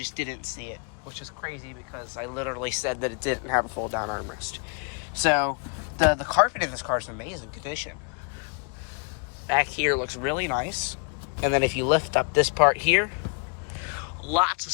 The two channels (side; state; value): right; quieter; 36.9 dB